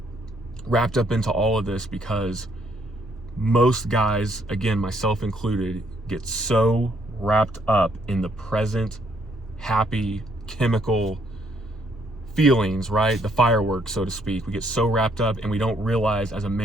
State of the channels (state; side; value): normal; both; correlation 0.70